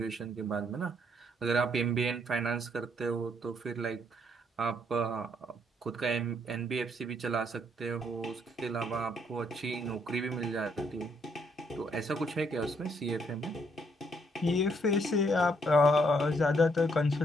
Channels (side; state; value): both; normal; correlation 0.70